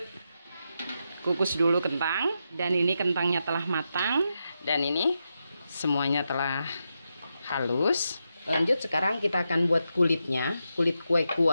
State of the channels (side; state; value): both; inverted; correlation -0.86